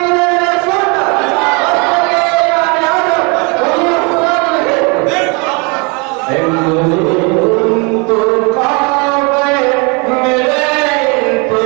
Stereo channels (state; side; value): quieter; left; 31.2 dB